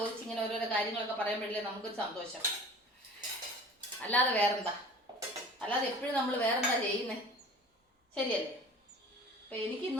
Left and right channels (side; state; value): both; normal; correlation 0.43